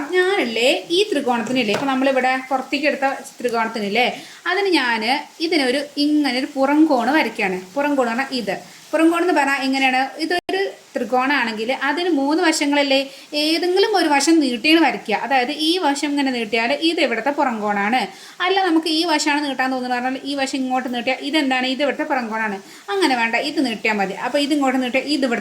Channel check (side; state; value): both; identical; correlation 1.00